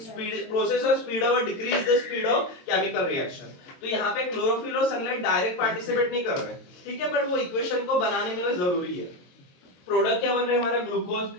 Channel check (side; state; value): right; late; 22 ms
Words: speed process और स्पीड अप और decrease the speed of chemical reaction. तो यहाँ पे क्लोरोफिल और सनलाइट डायरेक्ट पार्टिसिपेट नहीं कर रहे, ठीक है, बट वो इक्वेशन को बनाने में जरूरी है। प्रोडक्ट क्या बन रहा है हमारा ग्लूकोज,